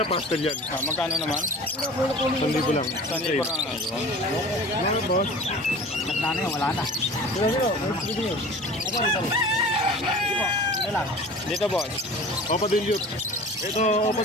pastel yan. Magkano naman? 1,000 lang. Saan yung parang Ano, boss? Nagdano yun, wala na. dito boss? Opa Dilute. Ito Opa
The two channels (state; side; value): normal; both; correlation 0.40